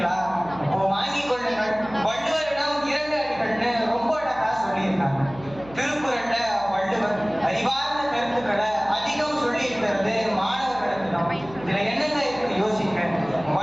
அப்போ வாங்கிக் கொள்ளுங்கள். வள்ளுவரிடம் 2 அடிகள்னு ரொம்ப அழகா சொல்லியிருக்காங்க. திருக்குறள்ல வள்ளுவர் அறிவார்ந்த கருத்துக்களை அதிகம் சொல்லி இருக்கிறது மாணவர்களுக்கு தான். இதுல என்னங்க இருக்கு யோசிக்க.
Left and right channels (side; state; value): right; noise; hum, 20 dB below the sound